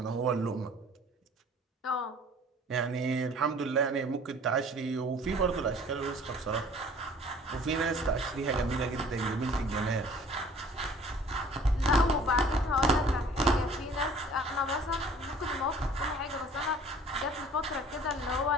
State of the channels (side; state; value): both; normal; correlation 0.50